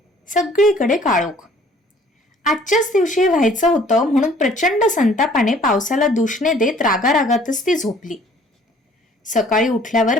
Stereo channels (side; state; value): both; normal; correlation 0.56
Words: सगळीकडे काळोख. आजच्याच दिवशी व्हायचं होतं म्हणून प्रचंड संतापाने पावसाला दूषणे देत रागारागातच ती झोपली. सकाळी उठल्यावर